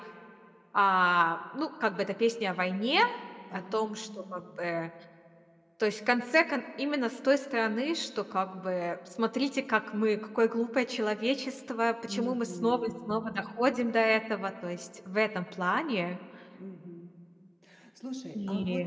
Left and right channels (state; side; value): identical; both; correlation 1.00